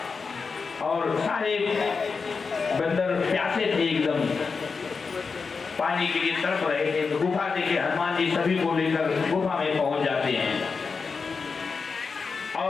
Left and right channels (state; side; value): quieter; right; 4.9 dB